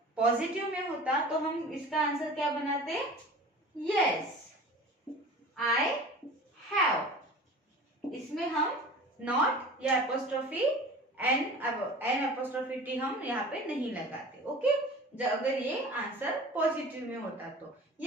पॉजिटिव में होता तो हम इसका आंसर क्या बनाते, यस आई हैव, इसमें हम नॉट या एपोस्ट्रोफी एन एपोस्ट्रोफी टी हम यहाँ पे नहीं लगाते। ओके, अगर ये आंसर पॉजिटिव में होता तो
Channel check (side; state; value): both; normal; correlation 0.39